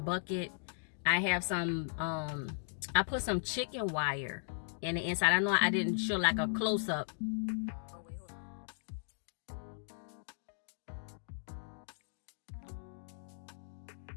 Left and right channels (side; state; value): right; silent; digital silence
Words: I have some, I put some chicken wire in the inside. I know I didn't show like a close-up